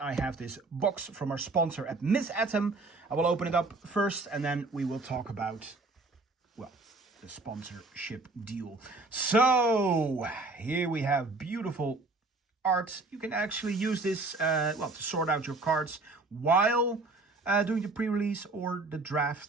have this box from our sponsor at Miss Atom. I will open it up first and then we will talk about, well, the sponsorship deal. So, here we have beautiful art. You can actually use this, to sort out your cards while doing the pre-release or the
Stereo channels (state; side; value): quieter; left; 3.3 dB